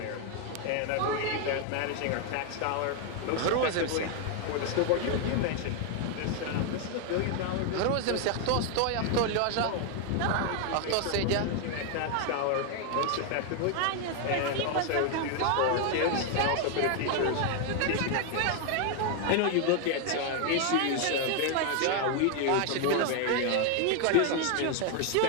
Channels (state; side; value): different; both; correlation 0.00